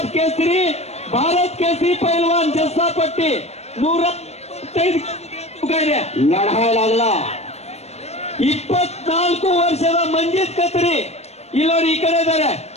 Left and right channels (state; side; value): late; right; 0.31 ms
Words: केसरी, भारत केसरी पहलवान जस्सा पट्टी लढायला लागला। 24 ವರ್ಷದ ಮಂಜಿತ್ ಖತ್ರಿ ಇಲ್ಲೋಡಿ ಈ ಕಡೆ ಇದ್ದಾರೆ।